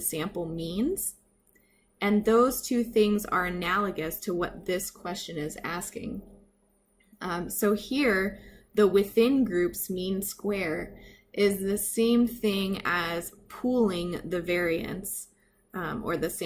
means. And those two things are analogous to what this question is asking. So here, the within groups mean square is the same thing as pooling the variance or the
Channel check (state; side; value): identical; both; correlation 1.00